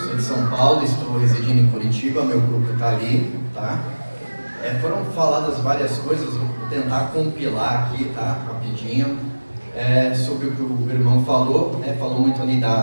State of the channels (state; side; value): inverted; both; correlation -1.00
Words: de São Paulo, estou residindo em Curitiba, meu grupo está ali, tá? Foram faladas várias coisas, vou tentar compilar aqui, tá? Rapidinho, sobre o que o irmão falou, falou muito ali